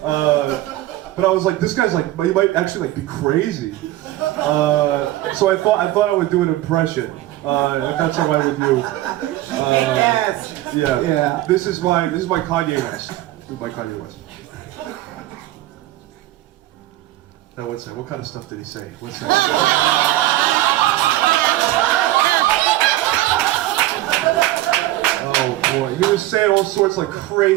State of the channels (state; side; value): quieter; left; 15.6 dB